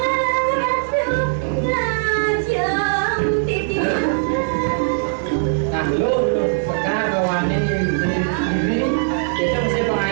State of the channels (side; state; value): left; silent; digital silence